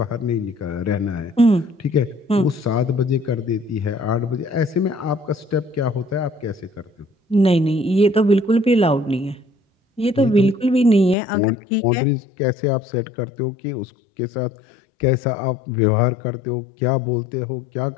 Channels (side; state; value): right; drops out; at 11.2 s